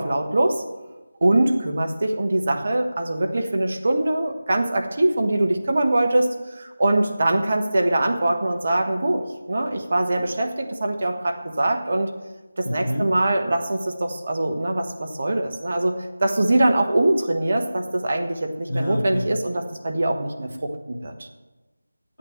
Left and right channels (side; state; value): both; inverted; correlation -0.96